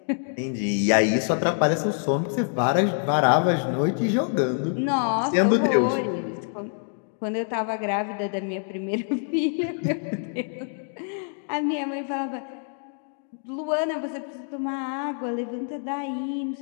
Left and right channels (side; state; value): right; silent; 61 dB below the other